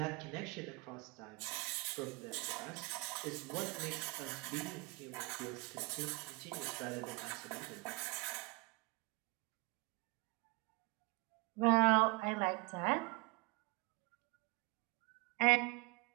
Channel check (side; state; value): left; quieter; 27.7 dB